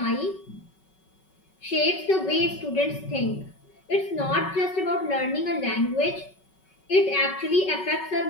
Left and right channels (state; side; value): late; right; 5.3 ms